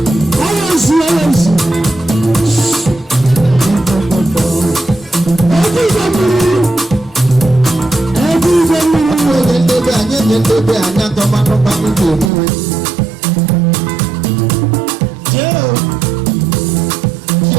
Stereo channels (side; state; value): left; drops out; at 12.3 s